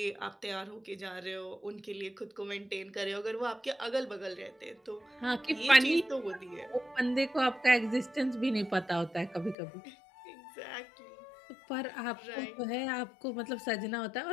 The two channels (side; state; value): right; drops out; at 9.6 s